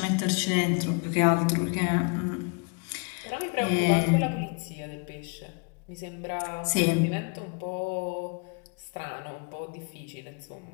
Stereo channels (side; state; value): right; quieter; 34.9 dB